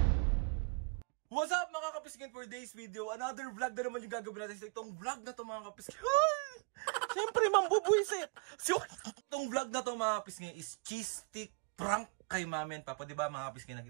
What's up mga kapiskin, for today's video? Another vlog na naman yung gagawin natin. So itong vlog na to mga kapiskin, siyempre mambubuisit. So itong vlog na to mga kapiskin is cheese stick prank kay Mama and Papa. Diba mga kapiskin,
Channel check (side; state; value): left; quieter; 36.1 dB